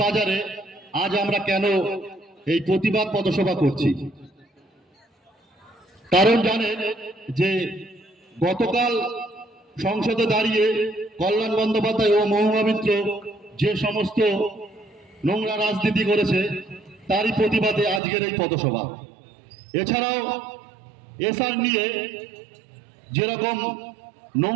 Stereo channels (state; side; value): drops out; left; at 18.0 s